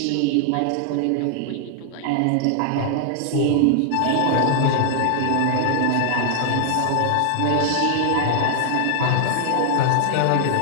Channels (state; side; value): different; both; correlation -0.01